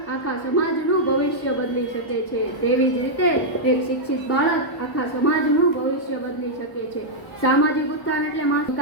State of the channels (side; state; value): right; late; 1.0 ms